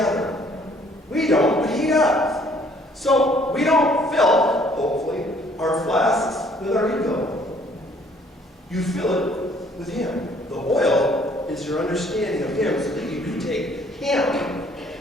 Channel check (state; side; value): normal; both; correlation 0.60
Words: We don't, but he does. So we don't fill, hopefully, our flasks with our ego. You fill it with him. The oil is your understanding of him so that you can take him